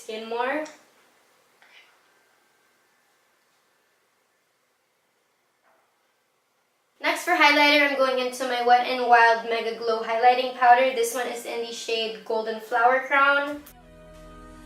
more. Next for highlighter, I'm going into my Wet n Wild Megaglo highlighting powder. This one is in the shade Golden Flower Crown.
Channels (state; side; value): identical; both; correlation 1.00